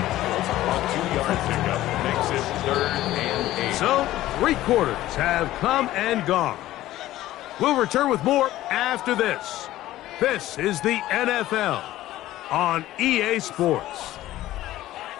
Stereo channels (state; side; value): quieter; right; 15.1 dB